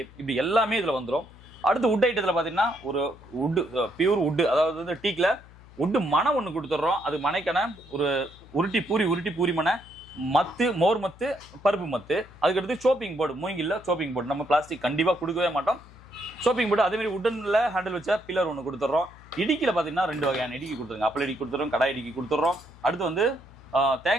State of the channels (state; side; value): noise; left; hum, 22 dB below the sound